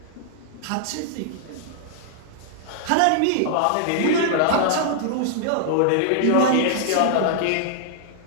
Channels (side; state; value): both; different; correlation -0.01